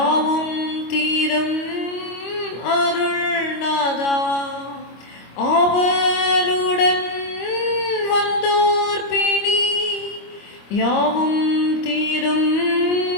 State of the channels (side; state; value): right; late; 25 ms